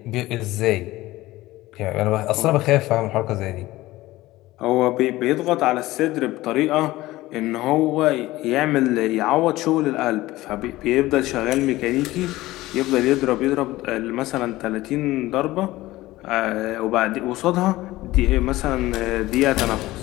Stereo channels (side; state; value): right; quieter; 17.7 dB